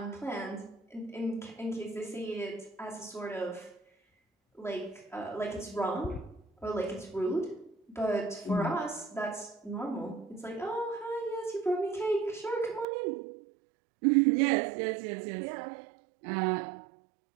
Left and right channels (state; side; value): drops out; left; at 12.9 s